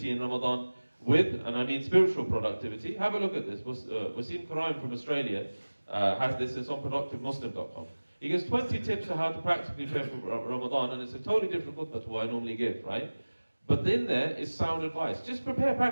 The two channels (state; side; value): inverted; both; correlation -1.00